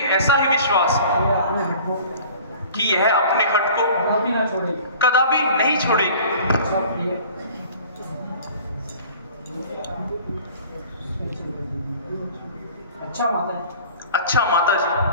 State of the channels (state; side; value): inverted; both; correlation -0.46